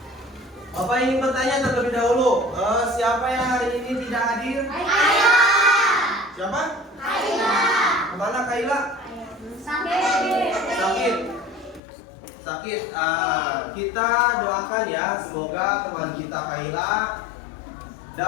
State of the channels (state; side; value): drops out; right; at 11.8 s